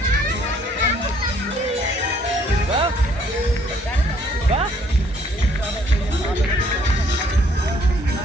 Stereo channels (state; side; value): normal; both; correlation 0.63